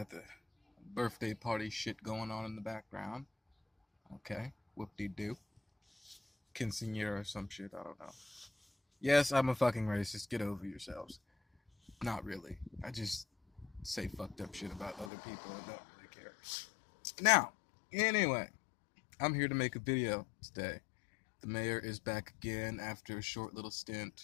the birthday party shit going on in the background. Okay, whoop-de-doo. Quinceañera or some shit, I don't know. Yes, I'm a fucking racist. Get over yourselves. Not really. I just say fucked up shit about other people and don't really care. Now, anyway, I'm here to make a video today. The mayor is back again after a short little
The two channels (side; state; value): right; drops out; at 15.1 s